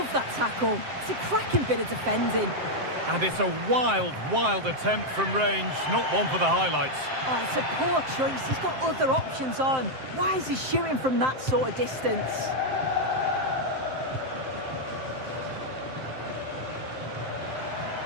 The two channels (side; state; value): left; late; 7.7 ms